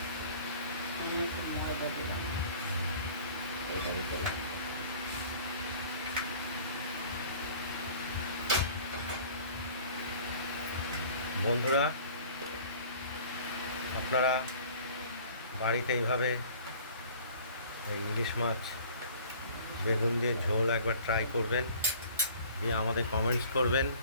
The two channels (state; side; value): inverted; both; correlation -0.48